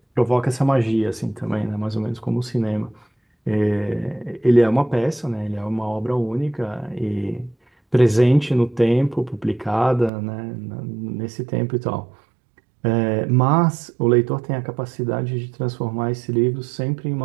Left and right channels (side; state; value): left; drops out; at 10.1 s